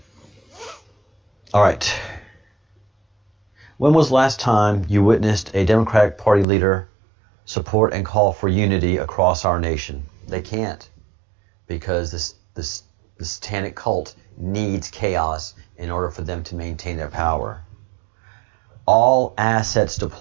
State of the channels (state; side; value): drops out; left; at 6.5 s